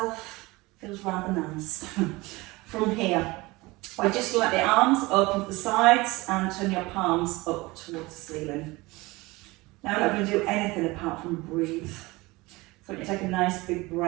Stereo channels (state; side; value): quieter; left; 22.1 dB